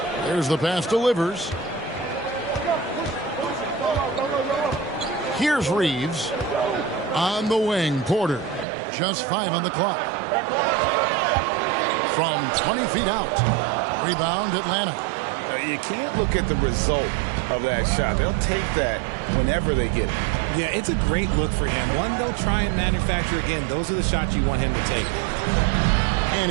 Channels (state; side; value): drops out; left; at 8.7 s